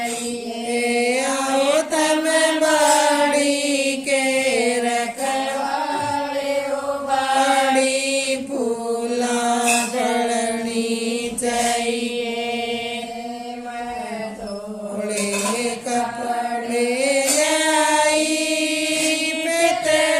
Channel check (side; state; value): both; identical; correlation 1.00